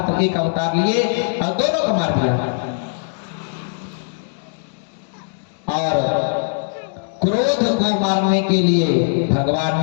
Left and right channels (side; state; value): right; silent; digital silence